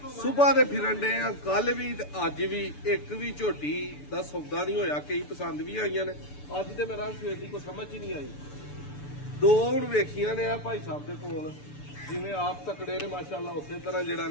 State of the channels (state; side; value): late; right; 6.9 ms